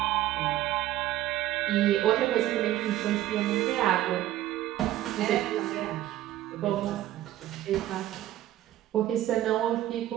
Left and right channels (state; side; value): quieter; left; 13.9 dB